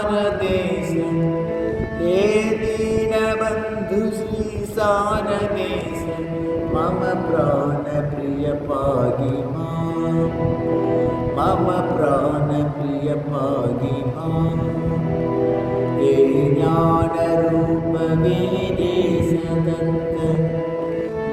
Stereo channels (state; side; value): identical; both; correlation 1.00